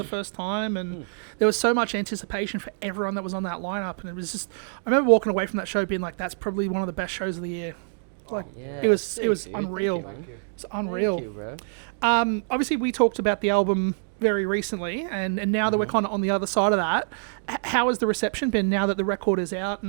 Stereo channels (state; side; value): silent; left; digital silence